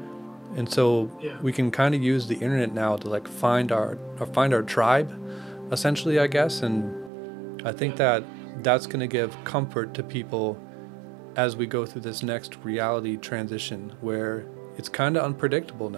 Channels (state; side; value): drops out; left; at 7.1 s